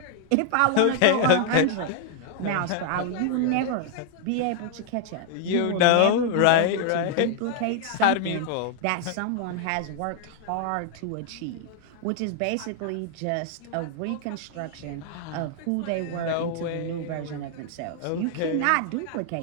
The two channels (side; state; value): both; different; correlation 0.00